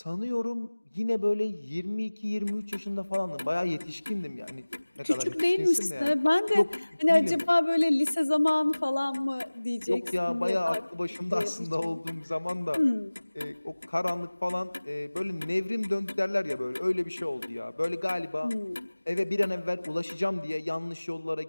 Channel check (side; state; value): both; inverted; correlation -1.00